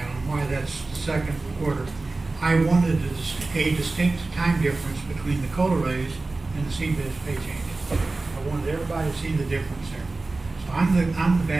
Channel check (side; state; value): left; quieter; 3.4 dB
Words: on why that's the 2nd quarter. I wanted a distinct time difference between the COLA raise and the CBIZ pay change. I wanted everybody to see the difference there. So I'm the